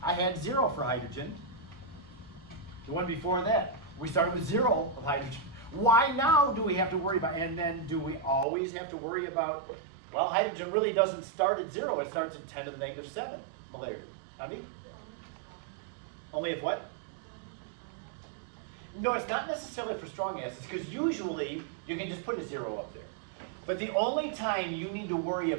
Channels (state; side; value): drops out; left; at 8.5 s